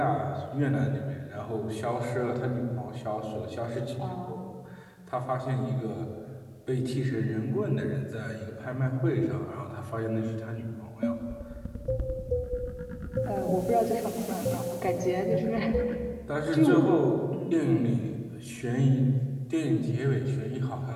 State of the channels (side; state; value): both; identical; correlation 1.00